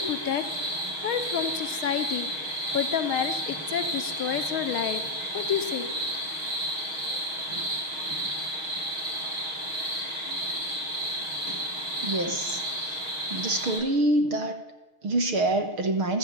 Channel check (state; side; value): late; left; 6.4 ms